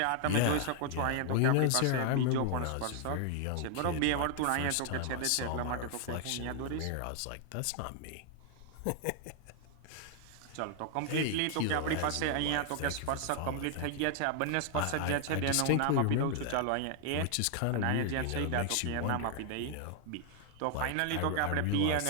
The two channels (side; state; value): both; different; correlation 0.00